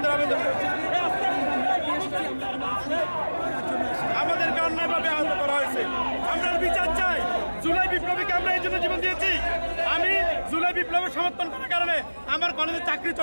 আবেদন আমাদেরকে অন্যায়ভাবে আহত করা হয়েছে। আমরা বিচার চাই। জুলাই বিপ্লবীকে আমরা এই জন্য জীবন দিয়েছি। আমি জুলাই বিপ্লবের সমর্থন করার কারণে আমার কলেজে চাকরি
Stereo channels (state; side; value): inverted; both; correlation -1.00